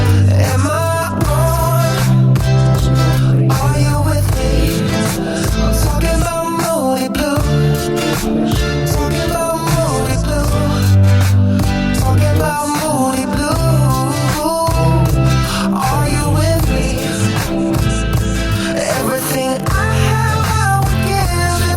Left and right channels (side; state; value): both; identical; correlation 1.00